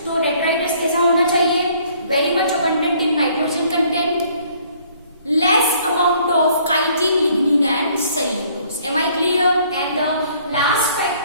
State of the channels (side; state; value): both; inverted; correlation -0.61